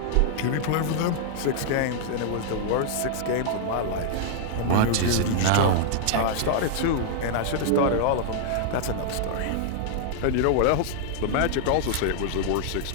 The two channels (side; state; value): both; different; correlation -0.01